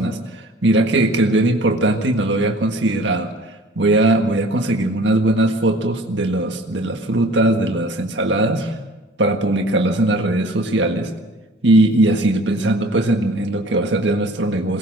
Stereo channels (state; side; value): normal; both; correlation 0.49